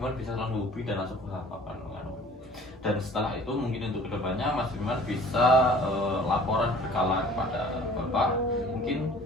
bisa langsung hubungi dan langsung berhadapan dan setelah itu mungkin untuk kedepannya Mas Firman bisa laporan berkala kepada Bapak mungkin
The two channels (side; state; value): both; normal; correlation 0.49